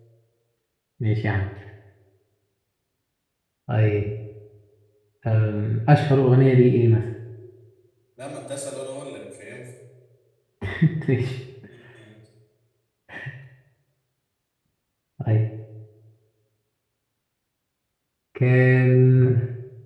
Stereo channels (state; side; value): identical; both; correlation 1.00